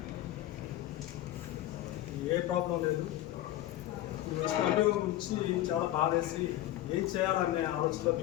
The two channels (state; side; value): quieter; right; 14.2 dB